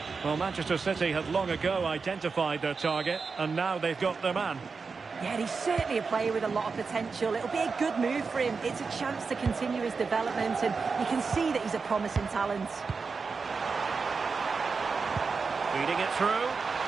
Well, Manchester City had long ago identified their target, and now they've got their man. Yeah, he's certainly a player with a lot of potential. It'll be a good move for him. It's a chance to continue his development, and you can see that he's a promising talent. Feeding it through.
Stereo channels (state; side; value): quieter; left; 4.8 dB